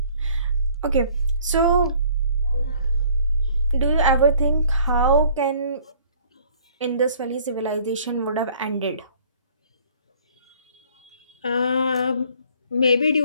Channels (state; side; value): inverted; both; correlation -0.56